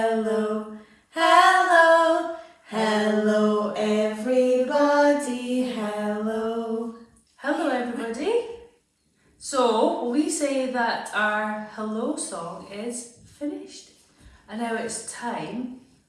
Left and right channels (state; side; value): identical; both; correlation 1.00